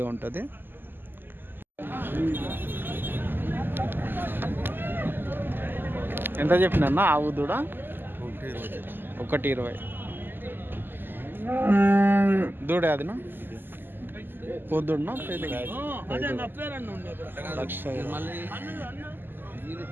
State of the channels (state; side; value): late; left; 0.094 ms